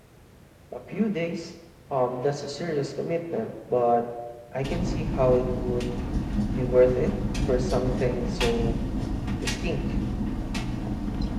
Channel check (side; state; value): both; identical; correlation 1.00